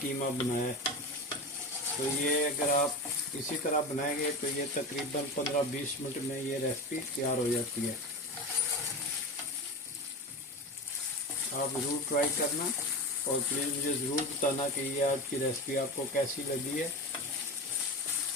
बनाया है। तो ये अगर आप इसी तरह बनाएंगे तो ये तकरीबन 15-20 मिनट में ये रेसिपी तैयार हो जाती है। आप ज़रूर ट्राई करना और प्लीज़ मुझे ज़रूर बताना कि ये आज की रेसिपी आपको कैसी लगी है।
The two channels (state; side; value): normal; both; correlation 0.25